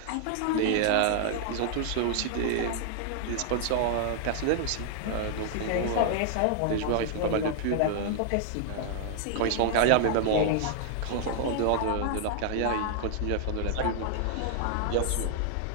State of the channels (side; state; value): both; different; correlation 0.00